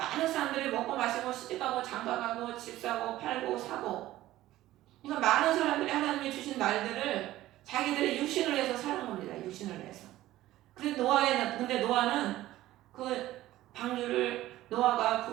사람들이 먹고 마시고 시집가고 장가가고 집 사고 팔고 사고, 그러니까 많은 사람들이 하나님이 주신 날들을 자기들의 육신을 위해서 사는 겁니다. 육신을 위해서. 근데 노아는 그 방주를, 노아가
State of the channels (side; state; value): left; quieter; 15.3 dB